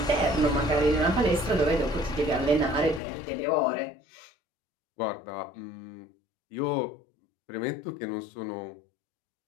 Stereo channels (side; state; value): right; drops out; at 3.0 s